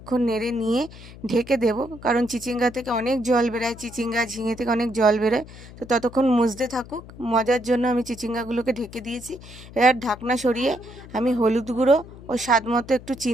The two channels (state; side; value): noise; left; hum, 17 dB below the sound